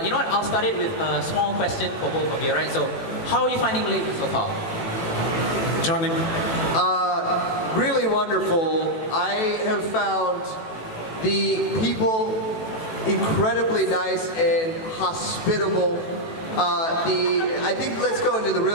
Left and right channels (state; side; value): late; right; 18 ms